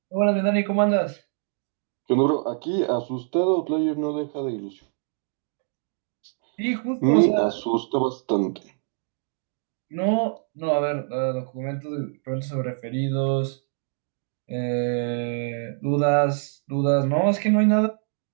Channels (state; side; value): silent; left; 60 dB below the other